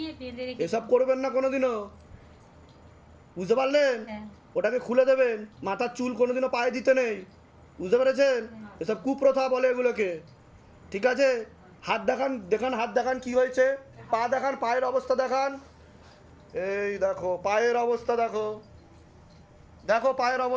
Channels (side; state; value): both; identical; correlation 1.00